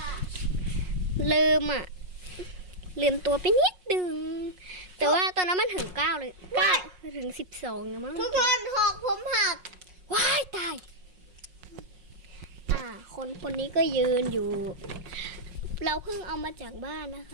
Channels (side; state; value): left; late; 5.5 ms